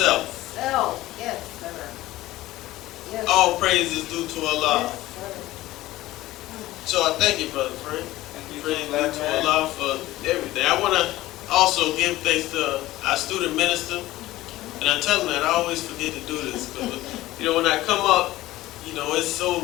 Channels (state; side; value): quieter; right; 16.7 dB